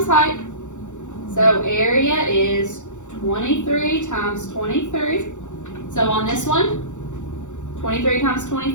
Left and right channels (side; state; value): right; late; 0.85 ms